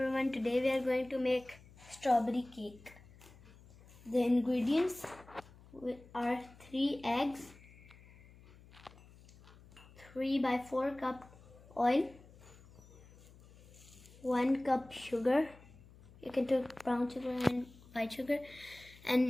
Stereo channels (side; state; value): left; noise; hum, 23 dB below the sound